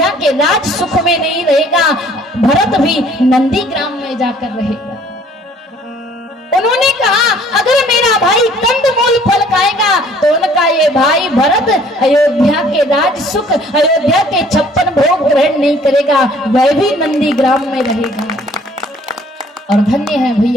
के राज सुख में नहीं रहेगा, भरत भी नंदीग्राम में जाकर रहेगा। उन्होंने कहा अगर मेरा भाई कंदमूल फल खाएगा तो उनका ये भाई भरत अयोध्या के राज सुख, अयोध्या के 56 भोग ग्रहण नहीं करेगा, वह भी नंदीग्राम में रहेगा। और धन्य है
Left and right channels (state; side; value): normal; both; correlation 0.57